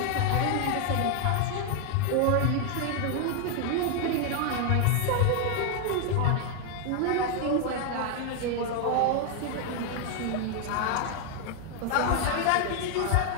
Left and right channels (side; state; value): both; different; correlation 0.00